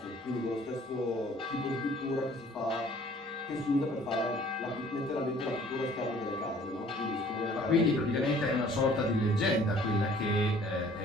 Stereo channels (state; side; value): normal; both; correlation 0.54